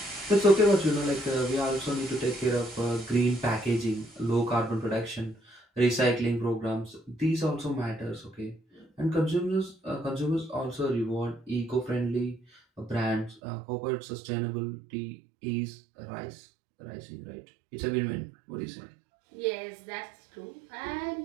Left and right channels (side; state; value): left; drops out; at 13.4 s